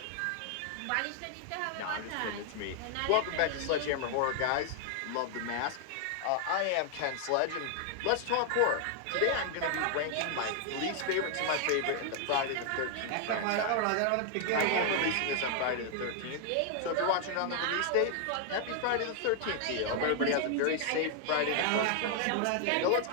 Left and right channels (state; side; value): different; both; correlation 0.00